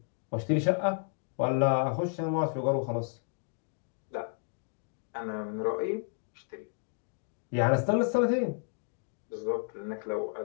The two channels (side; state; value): right; silent; 56 dB below the other